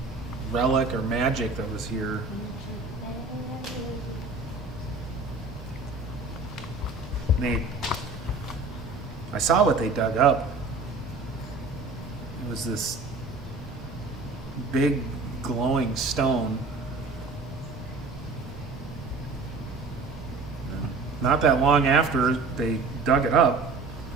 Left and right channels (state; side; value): quieter; left; 3.9 dB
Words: relic or magic that was here. I saw what they dug up. It was this big glowing stone. Not that long after they dug it up,